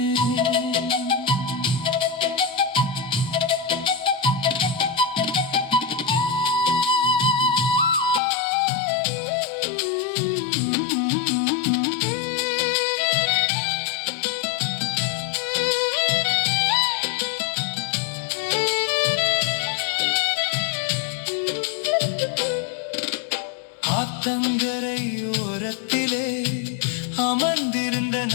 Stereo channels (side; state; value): right; drops out; at 8.2 s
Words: ஆத்தங்கரை ஓரத்திலே அமர்ந்திருந்த